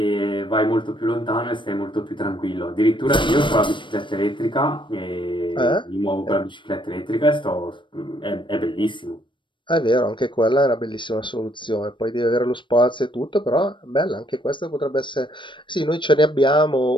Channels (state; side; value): late; right; 0.23 ms